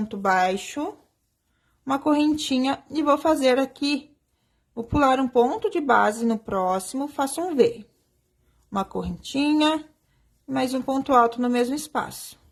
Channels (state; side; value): identical; both; correlation 1.00